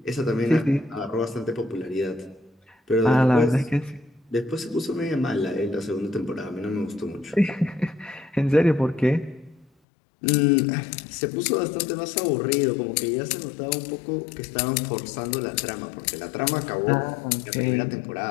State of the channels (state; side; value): drops out; right; at 9.7 s